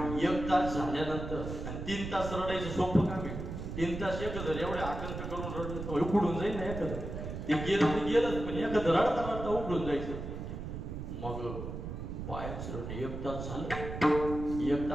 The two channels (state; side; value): noise; right; rumble, 7 dB below the sound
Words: एक तास झाल्यानंतर आणि 3 तास रडायचं सोपं काम आहे. 3 तास एकत्र एवढे आकांत करून रडलं तर उकडून जाईल ना एखादं. ते गेलं ते गेलंच, पण एखादं रडता रडता उकडून जायचं. मग पायाचं रडणं 1 तास झालं. 1